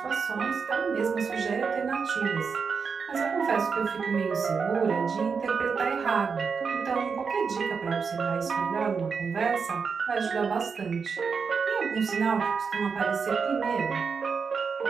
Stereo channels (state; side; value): quieter; left; 5.6 dB